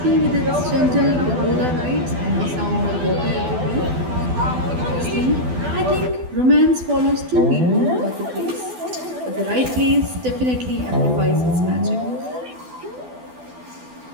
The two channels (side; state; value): left; late; 12 ms